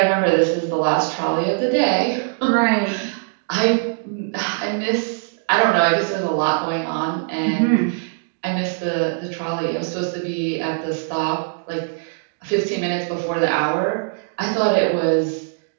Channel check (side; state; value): left; silent; digital silence